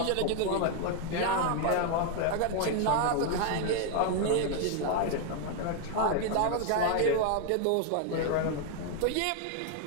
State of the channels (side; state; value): both; different; correlation 0.00